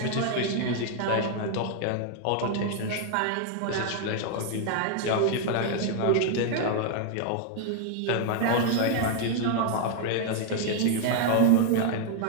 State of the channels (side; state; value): both; different; correlation 0.00